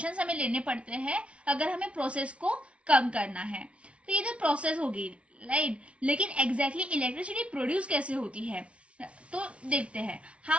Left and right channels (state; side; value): late; left; 0.061 ms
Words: हमें लेने पड़ते हैं अगर हमें प्रोसेस को कम करना है। तो ये जो प्रोसेस होगी, राइट, लेकिन एग्जैक्टली इलेक्ट्रिसिटी प्रोड्यूस कैसे होती है, तो देखते हैं